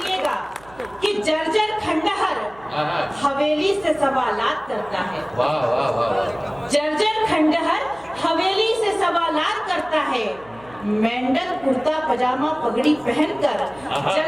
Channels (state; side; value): noise; right; hum, 24 dB below the sound